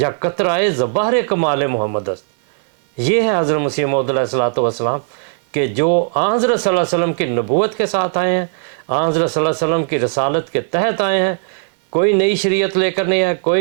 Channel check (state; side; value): silent; left; 62 dB below the other